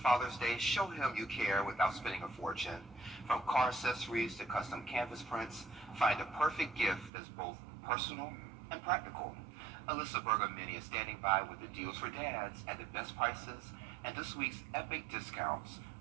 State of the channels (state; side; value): drops out; left; at 7.1 s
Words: Father's Day. Show him you care without spending a fortune. From car accessories to custom canvas prints, find a perfect gift that's both personal and practical. Alyssa Bergamini is standing by with the deals for dads at the best prices and this week's epic discounts